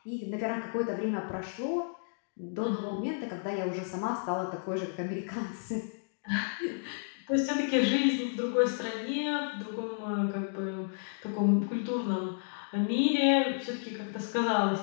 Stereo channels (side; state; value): right; silent; digital silence